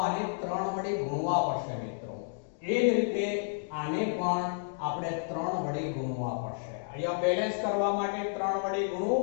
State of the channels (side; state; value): right; silent; digital silence